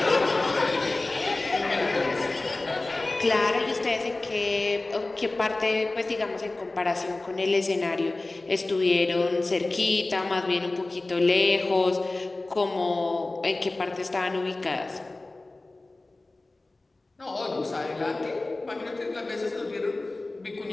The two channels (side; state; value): right; quieter; 3.0 dB